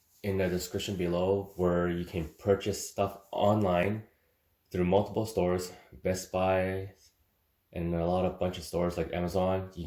in the description below where you can purchase stuff online through multiple stores, Best Buy, and a bunch of stores like Amazon.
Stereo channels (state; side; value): identical; both; correlation 1.00